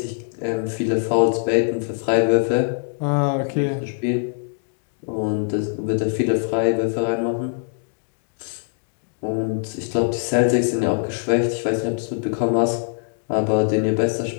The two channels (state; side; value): silent; right; digital silence